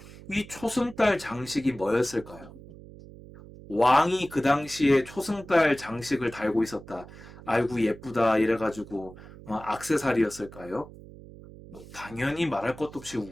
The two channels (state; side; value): noise; right; hum, 18 dB below the sound